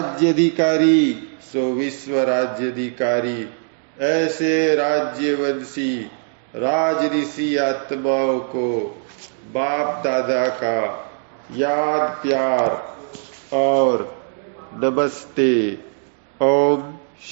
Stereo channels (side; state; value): left; silent; 65 dB below the other